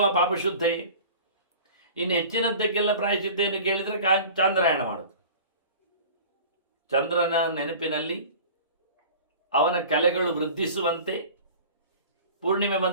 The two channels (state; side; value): inverted; both; correlation -0.40